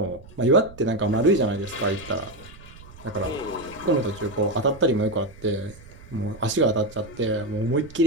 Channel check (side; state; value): right; noise; rumble, 20 dB below the sound